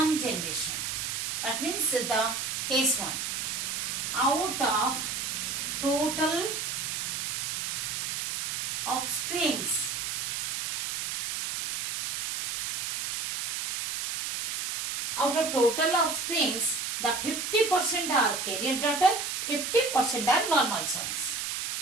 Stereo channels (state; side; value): noise; right; hiss, 3 dB below the sound